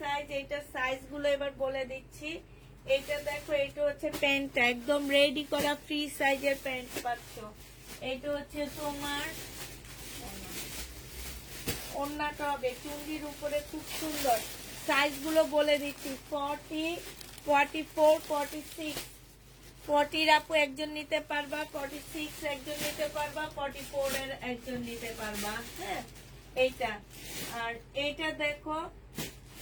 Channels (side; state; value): both; identical; correlation 1.00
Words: এইটা সাইজ গুলো এবার বলে দিচ্ছি। এটা দেখো, এটা হচ্ছে প্যান্টটা একদম রেডি করা ফ্রি সাইজের প্যান্ট পাচ্ছ। এটা হচ্ছে তোমার ওড়নাটা হবে চুন্ডির উপরে, খুব সুন্দর। সাইজ গুলো বলে দিচ্ছি। 40, 44, 46। 40 আপু একজন নিতে পারবা, 46 একজন নিতে পারবা, 44 এর একজন নিতে পারবা। হ্যাঁ, এইটা। আর এইটা দেখো